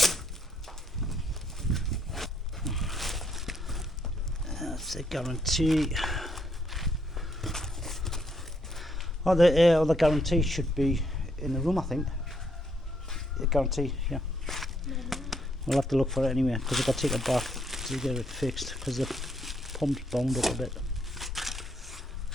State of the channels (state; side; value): normal; both; correlation 0.73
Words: That's a guarantee. Oh, the other guarantee should be in the room, I think. The guarantee, yeah. We'll have to look for it anyway, because I've got to take it back to get it fixed, because the pump's bound up a bit.